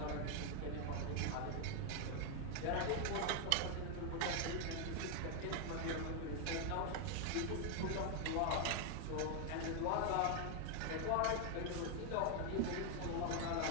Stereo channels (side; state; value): both; different; correlation 0.01